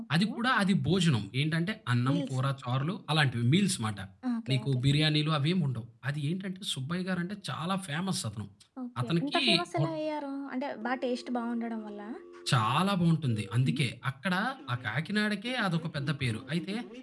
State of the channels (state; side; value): identical; both; correlation 1.00